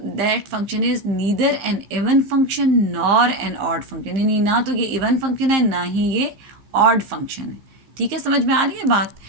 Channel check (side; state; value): left; late; 15 ms